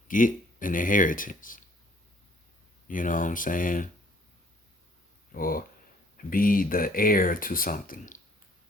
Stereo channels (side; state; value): both; normal; correlation 0.60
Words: get an inheritance. You know what I'm saying? Or be the heir to something.